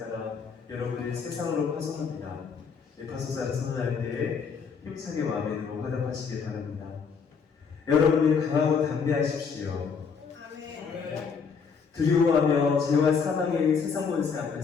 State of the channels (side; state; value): right; quieter; 5.8 dB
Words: 여러분을 세상으로 파송합니다. 파송자를 선언할 때에 힘차게 아멘으로 화답하시길 바랍니다. 여러분이 강하고 담대하십시오. 두려워하며 죄와 사망의 세상 권세